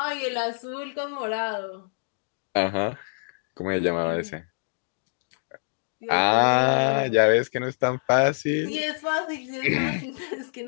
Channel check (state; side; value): silent; right; digital silence